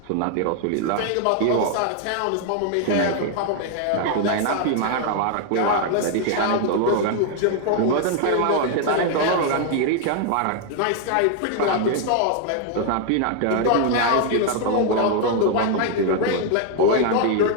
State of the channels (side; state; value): both; different; correlation 0.00